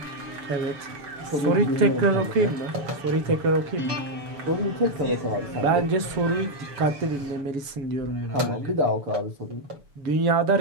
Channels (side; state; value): left; late; 7.0 ms